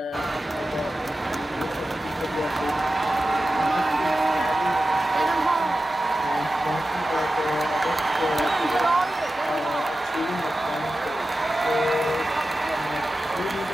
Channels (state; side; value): normal; both; correlation 0.93